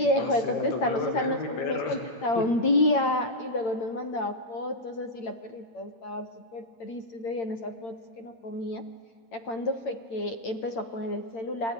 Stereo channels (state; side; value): late; right; 8.8 ms